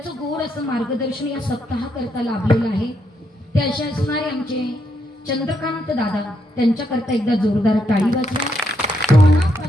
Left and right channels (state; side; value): normal; both; correlation 0.78